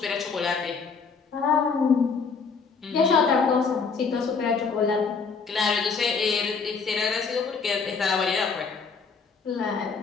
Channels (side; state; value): right; quieter; 5.2 dB